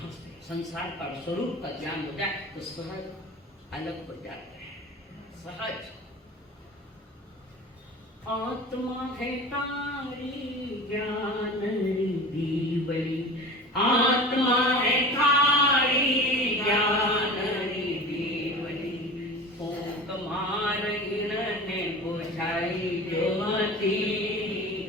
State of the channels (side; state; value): both; normal; correlation 0.36